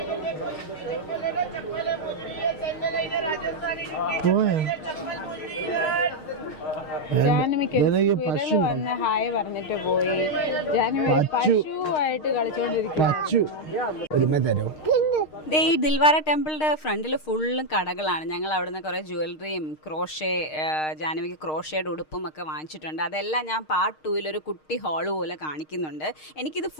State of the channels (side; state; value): right; late; 6.5 ms